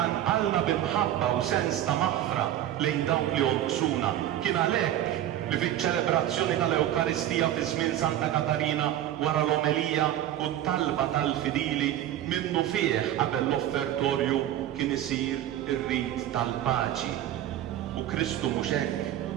b'imħabba u sens ta' maħfra lejn dawk li jonqsuna. Kien għalhekk li fiċ-ċelebrazzjoni tal-Ewkaristija fi żmien Santa Katarina wara l-omelija u t-talba tal-fidili minnu fih qabel l-offertorju kien isir ir-rit tal-paċi. U Kristu mhux hekk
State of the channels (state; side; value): quieter; left; 12.3 dB